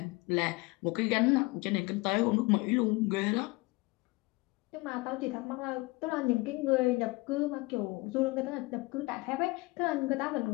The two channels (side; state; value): right; quieter; 23.9 dB